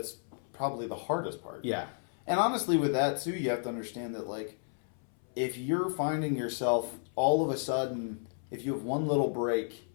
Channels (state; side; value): silent; right; 56 dB below the other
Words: probably the hardest part. Yeah. And honestly, with that too, you have to understand that, like, if you're finding yourself all of a sudden, if you have one little break,